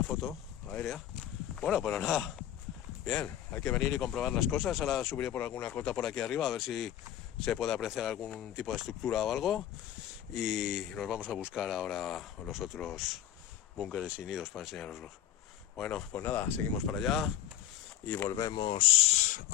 foto aérea. Bueno, pues nada, bien, hay que venir y comprobar las cosas. Ahora subiré por alguna cota por aquí arriba a ver si se puede apreciar algún tipo de estructura o algo, y nos vamos a buscar ahora los otros búnkeres y nidos para enseñaroslos. Bueno, pues nada, seguimos para allá y volvemos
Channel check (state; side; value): quieter; right; 11.7 dB